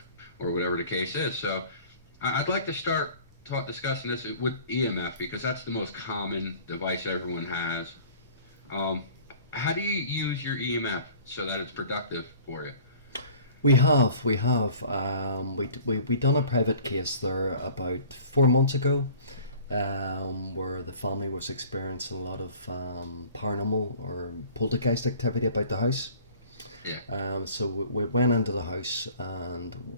whatever the case is. So I'd like to start discussing this with EMF, because that's the most common device everyone has. How do you use your EMF so that it's productive for you? We have. We done a private case there about 4 months ago, where the family was experiencing a lot of paranormal or poltergeist activity about the house. Yeah. So we went into the house and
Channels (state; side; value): inverted; both; correlation -0.48